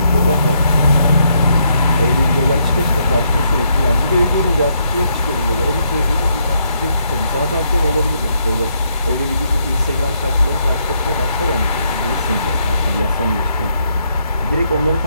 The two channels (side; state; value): both; inverted; correlation -0.75